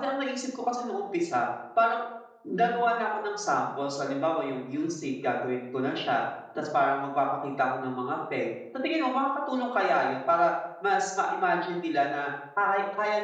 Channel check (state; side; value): identical; both; correlation 1.00